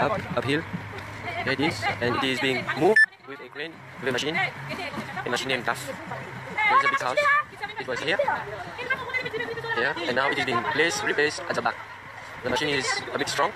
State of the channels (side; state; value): both; identical; correlation 1.00